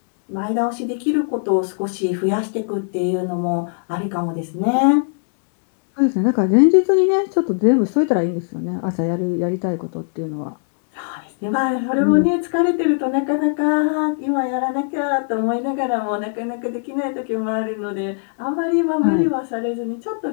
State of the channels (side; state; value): right; silent; digital silence